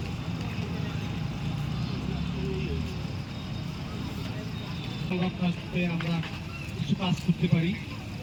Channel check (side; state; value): both; identical; correlation 1.00